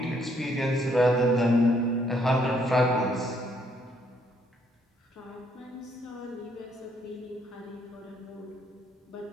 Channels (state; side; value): normal; both; correlation 0.69